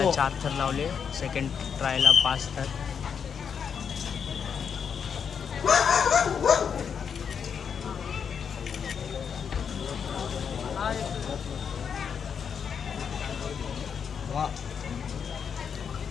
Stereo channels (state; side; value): quieter; right; 7.0 dB